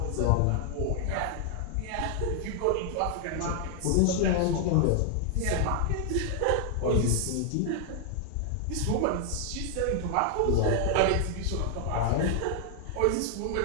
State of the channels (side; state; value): both; different; correlation 0.00